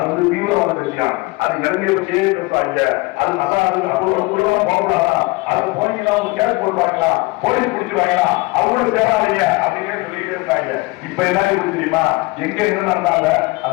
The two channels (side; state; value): right; quieter; 23.8 dB